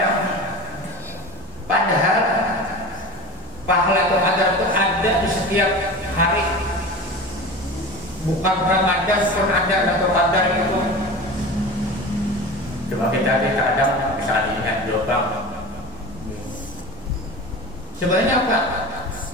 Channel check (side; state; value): both; normal; correlation 0.32